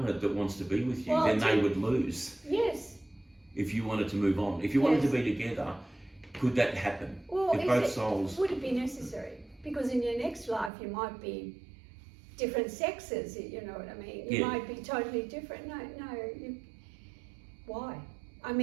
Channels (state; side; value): drops out; left; at 10.7 s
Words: that wants to be with you, then they would lose. Yes. If you wanted to move on. If you wanted to be together, could that happen? Well, if both souls... Would it be necessary? Because in your next life you might be different sexes, you know what I mean? You might be totally different. No, why? I